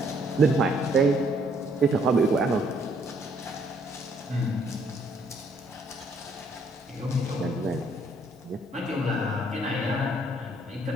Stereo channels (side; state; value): both; normal; correlation 0.66